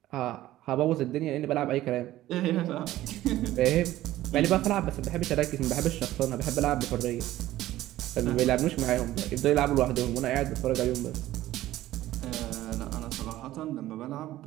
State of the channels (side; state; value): left; quieter; 15.0 dB